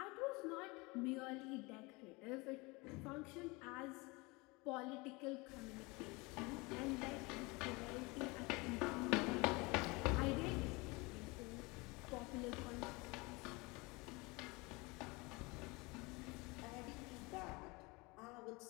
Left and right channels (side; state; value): right; quieter; 25.5 dB